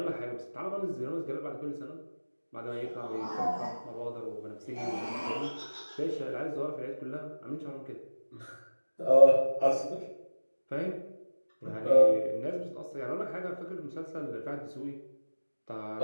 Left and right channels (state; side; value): inverted; both; correlation -1.00